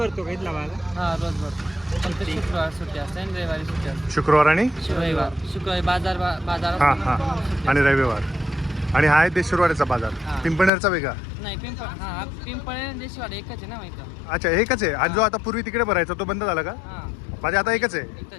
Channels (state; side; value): drops out; right; at 10.7 s